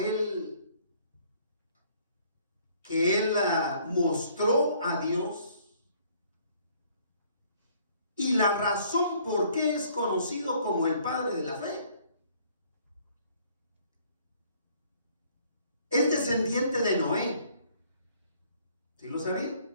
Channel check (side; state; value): both; inverted; correlation -0.61